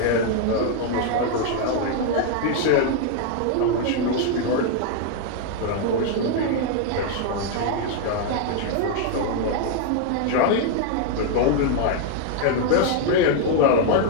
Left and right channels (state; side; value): different; both; correlation 0.00